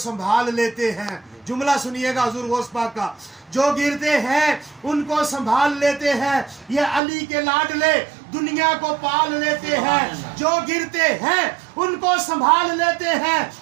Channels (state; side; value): drops out; left; at 7.0 s